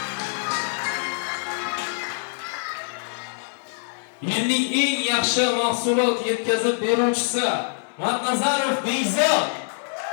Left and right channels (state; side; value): silent; right; digital silence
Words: Yilning eng yaxshi mahsulot yetkazib beruvchisi Matnazarov Bekzod.